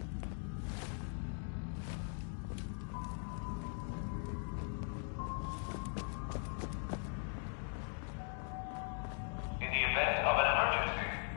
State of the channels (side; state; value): right; silent; 51 dB below the other